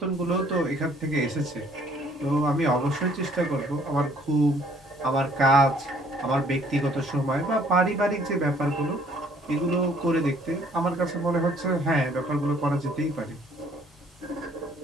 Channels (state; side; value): normal; both; correlation 0.60